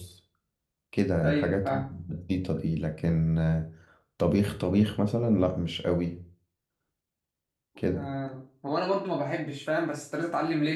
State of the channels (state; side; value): identical; both; correlation 1.00